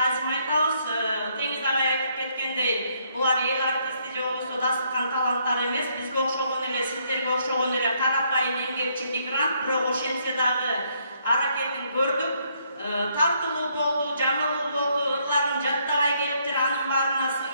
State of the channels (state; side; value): inverted; both; correlation -0.71